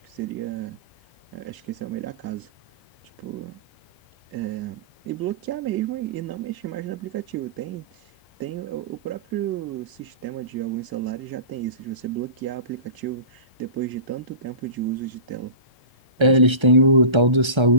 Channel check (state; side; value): late; left; 1.3 ms